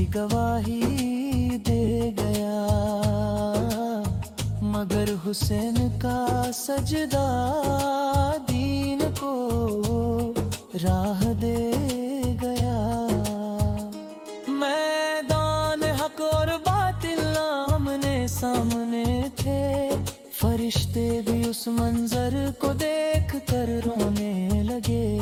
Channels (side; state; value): both; identical; correlation 1.00